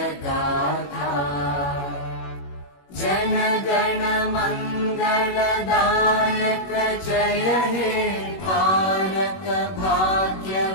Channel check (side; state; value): right; late; 21 ms